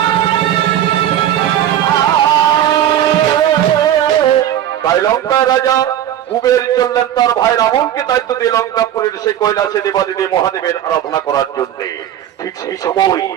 তাই লঙ্কা রাজা কুবের চললেন তার ভাই রাবণকে দায়িত্ব দিয়ে লঙ্কাপুরের সেই কৈলাসে দেবাদিদেব মহাদেবের আরাধনা করার জন্য। ঠিক সেই সময়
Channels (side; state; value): left; quieter; 11.1 dB